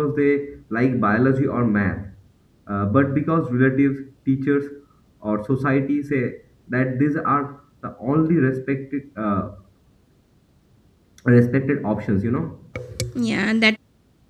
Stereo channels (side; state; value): both; identical; correlation 1.00